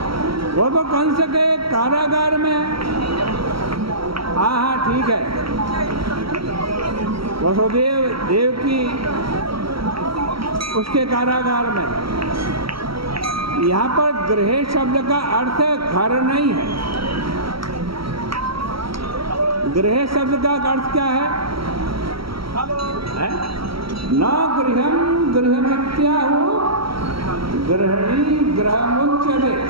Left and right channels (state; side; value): late; left; 0.75 ms